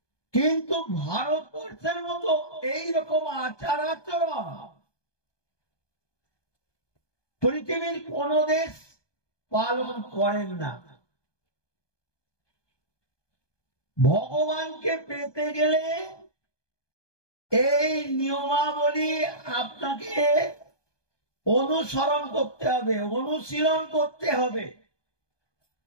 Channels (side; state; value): right; late; 1.2 ms